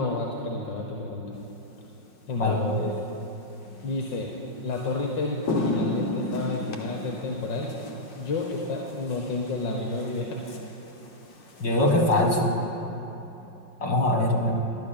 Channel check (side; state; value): right; late; 5.5 ms